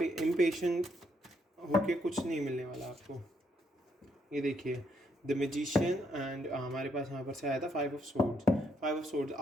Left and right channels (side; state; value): both; normal; correlation 0.75